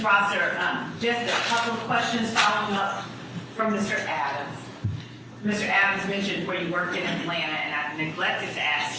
Prosser, just a couple of questions following up from Mr. Adams. Mr. Adams mentioned where you worked in Atlanta, and I neglected to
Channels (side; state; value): both; identical; correlation 1.00